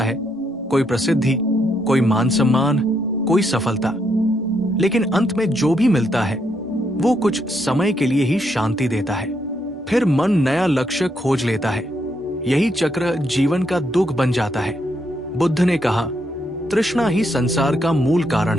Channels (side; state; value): both; normal; correlation 0.77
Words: है, कोई प्रसिद्धि, कोई मान सम्मान, कोई सफलता, लेकिन अंत में जो भी मिलता है वो कुछ समय के लिए ही शांति देता है। फिर मन नया लक्ष्य खोज लेता है। यही चक्र जीवन का दुख बन जाता है। बुद्ध ने कहा, तृष्णा ही संसार का मूल कारण